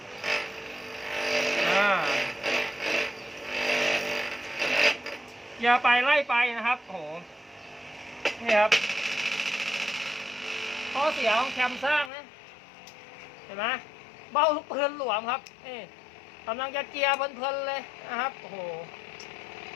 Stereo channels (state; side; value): drops out; right; at 12.1 s